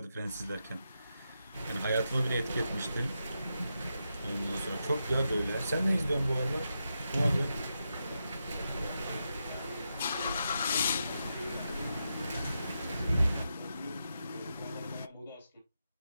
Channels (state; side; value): inverted; both; correlation -0.86